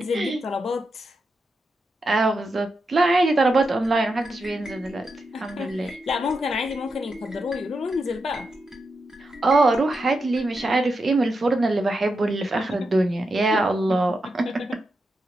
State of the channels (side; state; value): both; normal; correlation 0.86